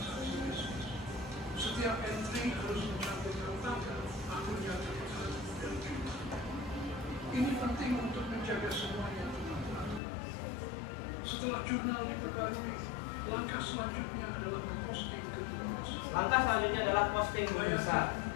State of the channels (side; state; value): right; drops out; at 10.0 s